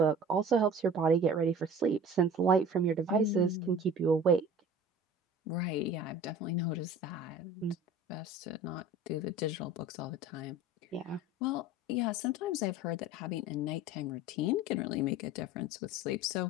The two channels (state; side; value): normal; both; correlation 0.42